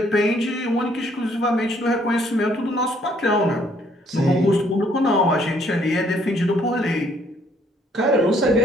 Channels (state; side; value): normal; both; correlation 0.65